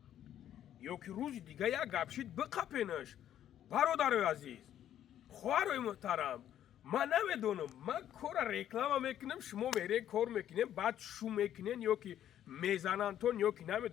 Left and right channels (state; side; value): quieter; right; 11.0 dB